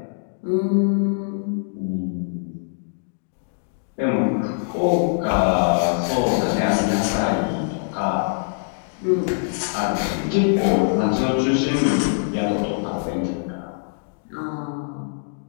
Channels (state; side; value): silent; right; digital silence